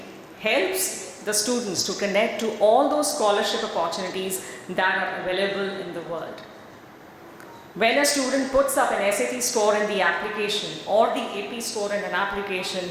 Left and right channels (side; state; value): both; identical; correlation 1.00